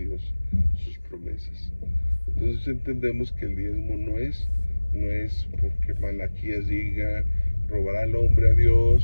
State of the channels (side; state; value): both; inverted; correlation -1.00